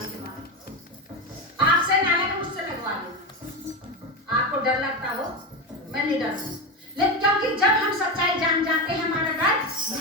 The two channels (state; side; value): normal; both; correlation 0.16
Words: आपसे नाले को मुझसे लगवा लो। आपको डर लगता हो, मैं नहीं डरती, लेकिन क्योंकि जब हम सच्चाई जान जाते हैं हमारा डर